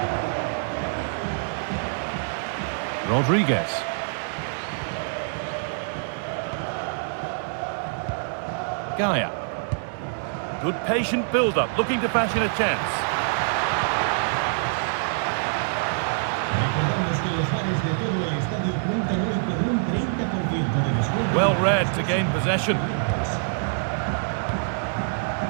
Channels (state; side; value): silent; left; 61 dB below the other